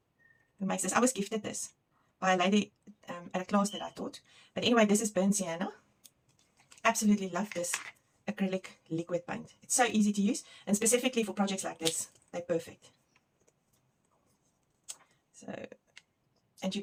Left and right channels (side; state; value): both; identical; correlation 1.00